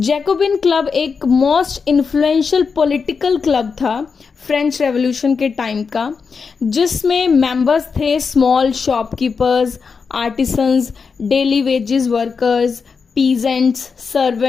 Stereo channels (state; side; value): quieter; right; 5.4 dB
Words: club एक मोस्ट इन्फ्लुएंशियल पॉलिटिकल क्लब था फ्रेंच रेवोल्यूशन के टाइम का, जिसमें मेंबर्स थे small shopkeepers, artisans, daily wages workers, peasants,